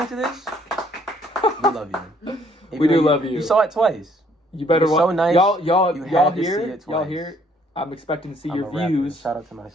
to this, we love you. We do love you. You saw it twice. You better You're so nice. Y'all You hear had to see it? it Y'all twice. hear it? I'm expecting to see I'm your a rapper. views Shout out to my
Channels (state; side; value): normal; both; correlation 0.64